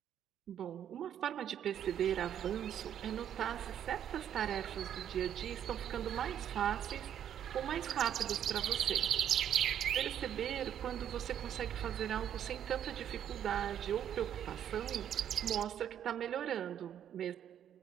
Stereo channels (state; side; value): quieter; left; 9.8 dB